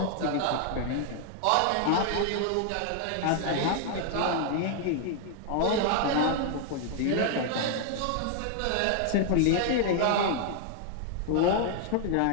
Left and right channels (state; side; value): different; both; correlation 0.00